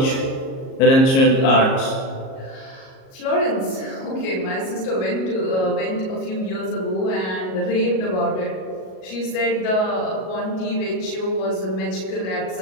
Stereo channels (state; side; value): late; right; 37 ms